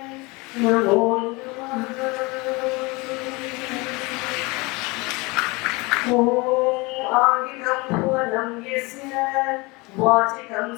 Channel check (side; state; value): right; quieter; 25.4 dB